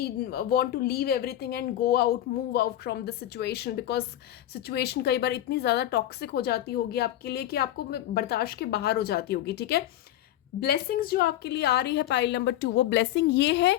want to leave everything and go out, move out from the situation, because situation कई बार इतनी ज़्यादा टॉक्सिक हो जाती होगी आपके लिए कि आपको बर्दाश्त के बाहर हो जाती होगी। ठीक है, ब्लेसिंग्स जो आपके लिए आ रही है पाइल नंबर 2, वो ब्लेसिंग ये है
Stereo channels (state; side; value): quieter; right; 12.9 dB